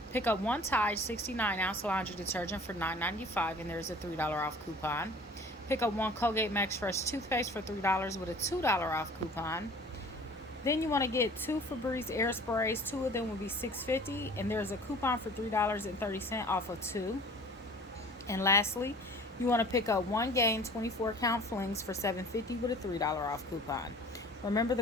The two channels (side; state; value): both; normal; correlation 0.47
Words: pick up one Tide 69-ounce laundry detergent for $9.95, and there's a $3 off coupon. Pick up one Colgate Max Fresh toothpaste for $3 with a $2 off coupon. Then you want to get two Febreze air sprays. Two of them will be $6.50, and there's a coupon for $3.30 off of two. And lastly, you want to pick up one Gain 24-count flings for $7.50 with a $3 off coupon. Remember,